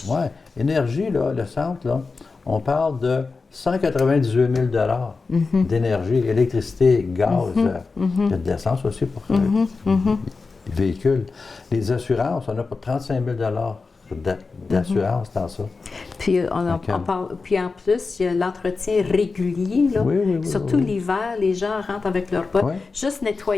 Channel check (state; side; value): quieter; right; 4.3 dB